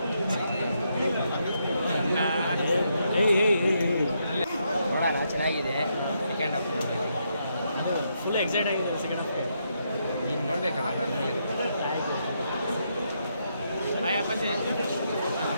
ನೋಡೋಣ ಚೆನ್ನಾಗಿದೆ ಸೆಕೆಂಡ್ ಹಾಫ್ ಫುಲ್ ಎಕ್ಸೈಟ್ ಆಗಿದೆ ಸೆಕೆಂಡ್ ಹಾಫ್ ಈಗ ನೋಡ್ಬೇಕಲ್ಲ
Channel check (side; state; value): both; inverted; correlation -0.79